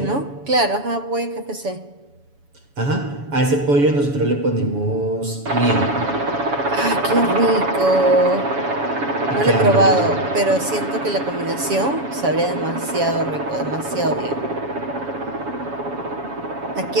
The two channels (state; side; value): late; left; 7.1 ms